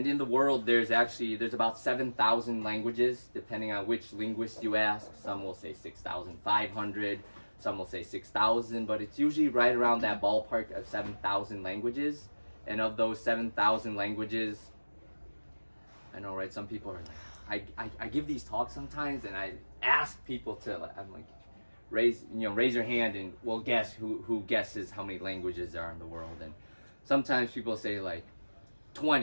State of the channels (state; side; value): inverted; both; correlation -1.00